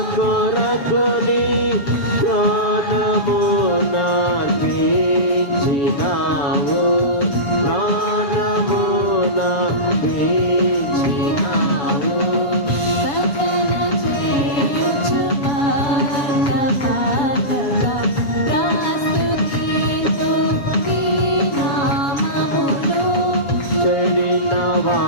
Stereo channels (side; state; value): right; late; 7.2 ms